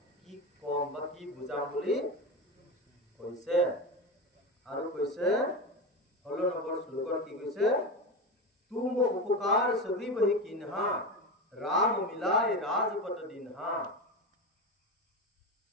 কি কম বা কি বুজাম বুলি কৈছে। আৰু কৈছে 16 নম্বৰ শ্লোকত কি কৈছে? तुम उपकार सभी बहि किन्हा राम मिलाय राजपट दिन्हा।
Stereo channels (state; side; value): normal; both; correlation 0.20